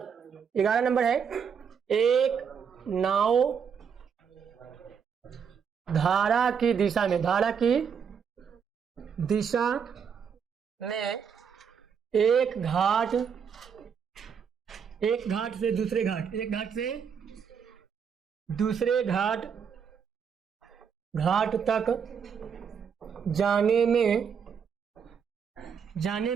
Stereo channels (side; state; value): left; quieter; 7.0 dB